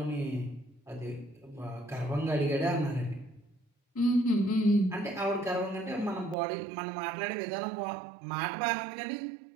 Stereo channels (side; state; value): left; drops out; at 6.4 s